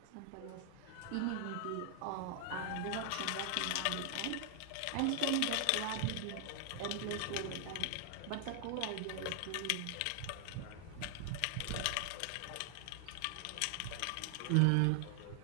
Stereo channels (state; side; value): different; both; correlation 0.00